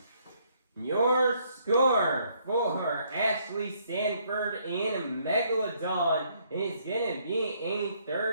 Your score for Ashley, Sanford, and Megalodon is going to be a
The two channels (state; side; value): inverted; both; correlation -0.68